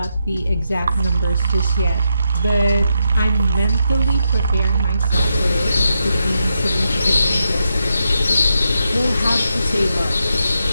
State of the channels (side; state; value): both; inverted; correlation -0.84